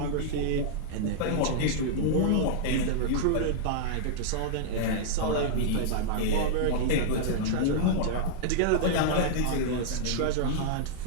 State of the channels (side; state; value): both; different; correlation -0.01